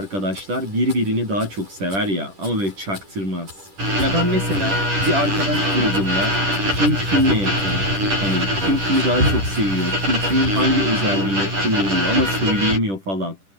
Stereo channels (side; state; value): left; late; 10 ms